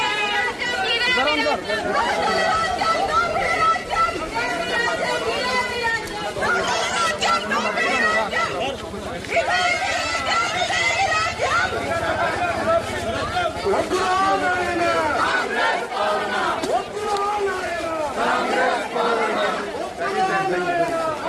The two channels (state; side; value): identical; both; correlation 1.00